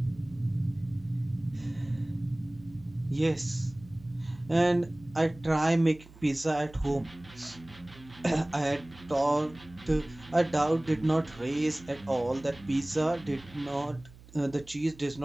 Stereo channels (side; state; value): right; noise; hum, 21 dB below the sound